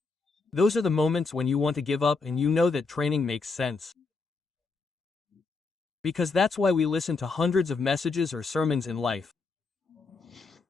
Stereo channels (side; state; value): right; quieter; 4.2 dB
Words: Those are the moments when you want to give up and you know that training makes sense. Because that's why we listen to hundreds of messages or sermons in life.